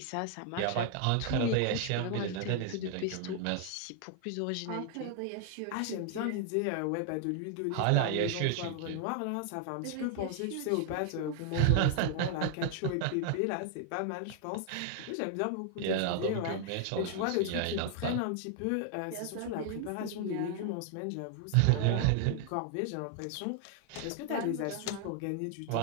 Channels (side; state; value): both; different; correlation 0.00